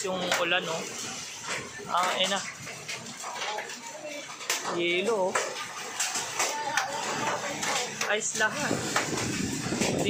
yung ulan, no? Na. Yelo, oh. Ayos lahat.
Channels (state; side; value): identical; both; correlation 1.00